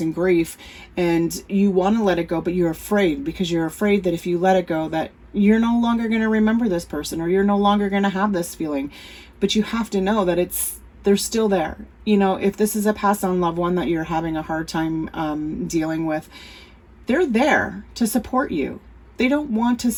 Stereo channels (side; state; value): both; identical; correlation 1.00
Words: grief, and you want to let it go, but you're afraid because you're afraid that if you let it go, that you're no longer going to remember this person, or you're no longer going to have this feeling. But you have to know that they're still there. You know, if this is a passed on loved one that you're having a hard time dealing with, they're there to support you. They don't want to